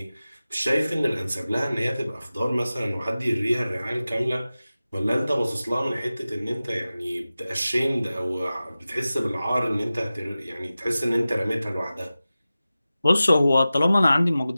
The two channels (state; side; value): inverted; both; correlation -0.95